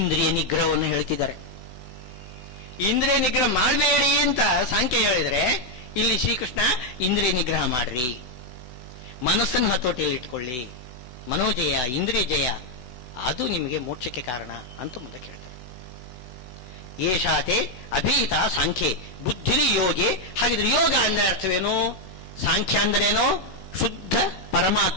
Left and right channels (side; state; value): right; late; 16 ms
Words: ನಿಗ್ರಹವನ್ನು ಹೇಳ್ತಿದ್ದಾರೆ. ಇಂದ್ರಿಯ ನಿಗ್ರಹ ಮಾಡಬೇಡಿ ಅಂತ ಸಾಂಖ್ಯ ಹೇಳಿದರೆ, ಇಲ್ಲಿ ಶ್ರೀಕೃಷ್ಣ ಇಂದ್ರಿಯ ನಿಗ್ರಹ ಮಾಡ್ರಿ. ಮನಸ್ಸನ್ನು ಹತೋಟಿಯಲ್ಲಿ ಇಟ್ಕೊಳ್ಳಿ. ಮನೋಜಯ, ಇಂದ್ರಿಯ ಜಯ, ಅದು ನಿಮಗೆ ಮೋಕ್ಷಕ್ಕೆ ಕಾರಣ ಅಂತ ಮುಂದೆ ಹೇಳ್ತಾರೆ. ಏಷಾತೆ ಅಭೀತ ಸಾಂಖ್ಯೆ ಬುದ್ಧಿರಿ ಯೋಗಿ. ಹಾಗಿದ್ರೆ ಯೋಗ ಅಂದ್ರೆ ಅರ್ಥವೇನು? ಸಾಂಖ್ಯ ಅಂದ್ರೇನು? ಶುದ್ಧ